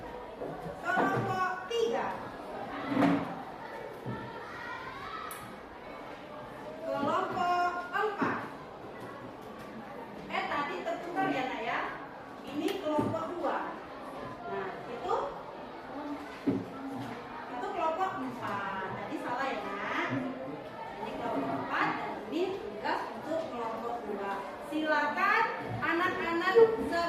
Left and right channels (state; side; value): identical; both; correlation 1.00